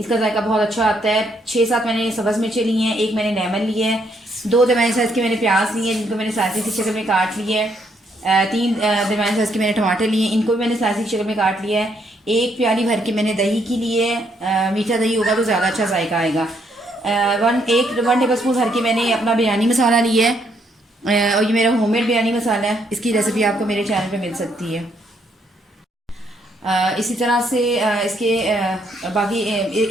जायका बहुत अच्छा आता है। 6-7 मैंने सब्ज़ मिर्चें ली हैं, एक मैंने लेमन लिया है, 2 दरमियाने साइज़ के मैंने प्याज लिए हैं जिनको मैंने स्लाइसिस की शक्ल में काट लिया है। 3 दरमियाने साइज़ के मैंने टमाटर लिए हैं, इनको भी मैंने स्लाइसिस की शक्ल में काट लिया है। एक प्याली भर के मैंने दही की लिए है। मीठा दही होगा तो ज़्यादा अच्छा जायका आएगा। 1 टेबल स्पून भर के मैंने अपना बिरयानी मसाला लिया है। और ये मेरा होममेड बिरयानी मसाला है, इसकी रेसिपी आपको मेरे चैनल पे मिल सकती है। इसी तरह से इसके बाकी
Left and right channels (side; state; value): both; normal; correlation 0.72